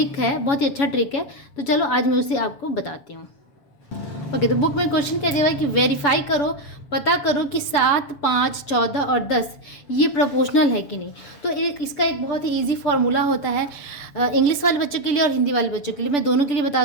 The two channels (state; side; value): late; right; 7.0 ms